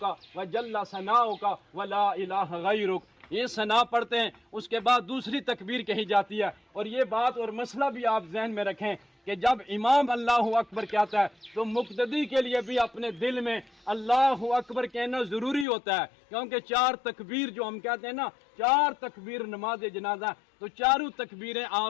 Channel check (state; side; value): drops out; right; at 15.7 s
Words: و جل ثناؤک و لا الہ غیرک. یہ ثنا پڑھتے ہیں، اس کے بعد دوسری تکبیر کہی جاتی ہے. اور یہ بات اور مسئلہ بھی آپ ذہن میں رکھیں کہ جب امام اللہ اکبر کہتا ہے تو مقتدی کے لیے بھی اپنے دل میں اللہ اکبر کہنا ضروری ہوتا ہے، کیونکہ 4 تکبیر جو ہم کہتے ہیں نا، 4 تکبیر نماز جنازہ، تو چاروں تکبیریں